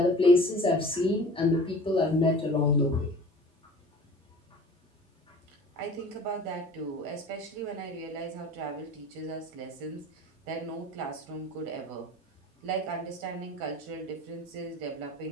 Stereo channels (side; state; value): both; normal; correlation 0.42